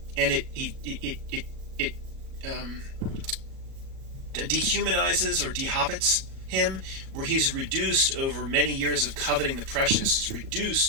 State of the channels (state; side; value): late; left; 37 ms